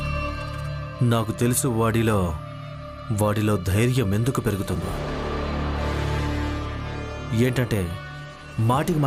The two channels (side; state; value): both; identical; correlation 1.00